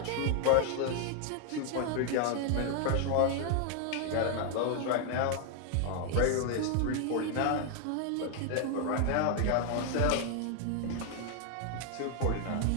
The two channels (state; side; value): different; both; correlation 0.00